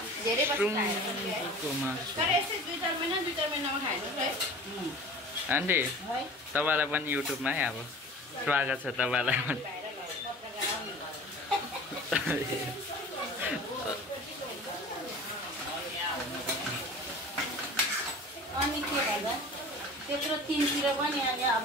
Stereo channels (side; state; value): both; normal; correlation 0.40